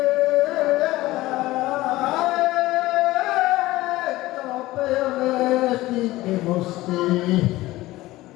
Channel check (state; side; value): quieter; right; 17.9 dB